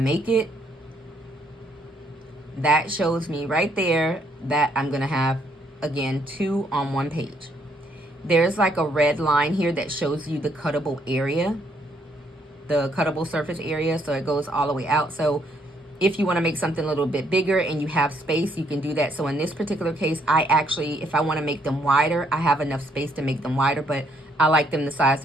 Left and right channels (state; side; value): normal; both; correlation 0.70